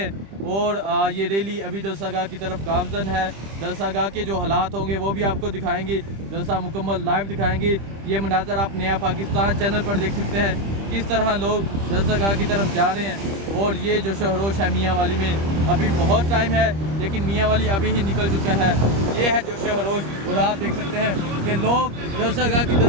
और ये रैली अभी जलसागाह की तरफ गामजन है। जलसागाह के जो हालात होंगे वो भी आपको दिखाएंगे, जलसा मुकम्मल लाइव दिखाएंगे। ये मनाज़र आप नया पाकिस्तान चैनल पर देख सकते हैं किस तरह लोग जलसागाह की तरफ जा रहे हैं। और ये जो शहरोश है मियाँ वाली में, अभी बहुत टाइम है, लेकिन मियाँ वाली अभी ही निकल चुका है। ये है जो शहरोश। और आप देख सकते हैं कि लोग जलसागाह की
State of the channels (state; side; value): late; left; 25 ms